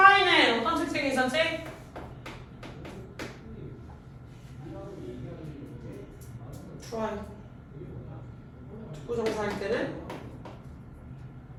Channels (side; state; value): both; identical; correlation 1.00